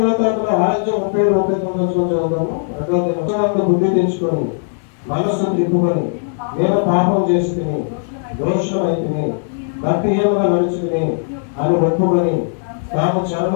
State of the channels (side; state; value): right; silent; digital silence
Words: 6:37-39 చదువుతాము. 2వ దినోత్సవంలో బుద్ధి తెచ్చుకొని మనస్సును తిప్పుకొని నేను పాపం చేసుకుని దోషమైతిని భక్తిహీనంగా నడుచుకుని అని ఒప్పుకొని తాము